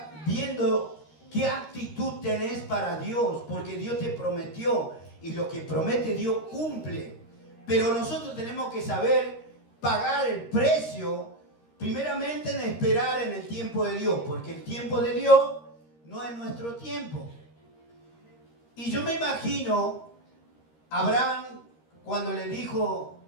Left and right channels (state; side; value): late; right; 13 ms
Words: viendo qué actitud tenés para Dios, porque Dios te prometió y lo que promete Dios cumple. Pero nosotros tenemos que saber pagar el precio, primeramente en esperar en el tiempo de Dios, porque el tiempo de Dios no es nuestro tiempo. Y yo me imagino a Abraham cuando